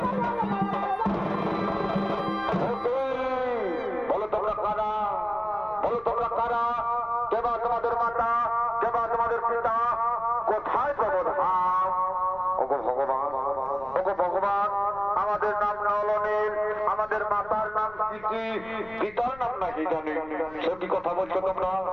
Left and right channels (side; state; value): left; noise; rumble, 22 dB below the sound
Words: বলো তোমরা কারা? বলো তোমরা কারা? কেবা তোমাদের মাতা, কেবা তোমাদের পিতা, কোথায় প্রবোধাম? ওগো ভগবান, ওগো ভগবান, আমাদের নাম নলনীল, আমাদের মাতার নাম কি, পিতার নাম নাকি জানি? সে কি কথা বলছো তোমরা?